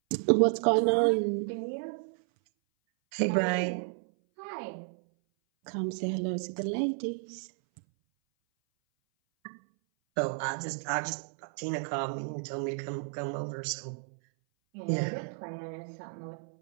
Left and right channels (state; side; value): silent; left; 57 dB below the other